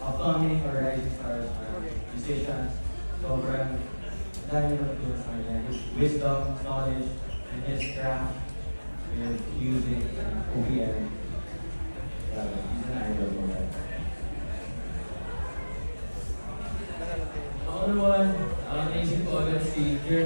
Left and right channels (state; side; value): inverted; both; correlation -1.00